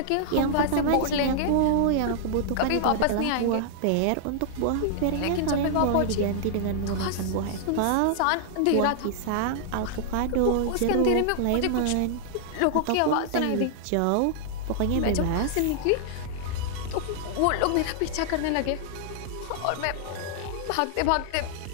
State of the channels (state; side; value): different; both; correlation -0.01